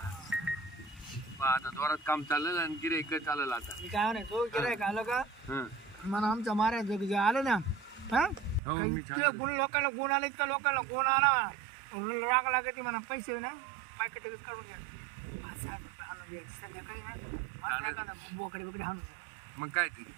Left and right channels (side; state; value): left; drops out; at 8.6 s